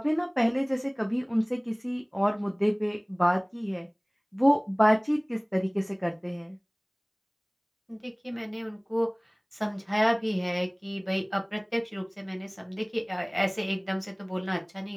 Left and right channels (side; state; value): both; identical; correlation 1.00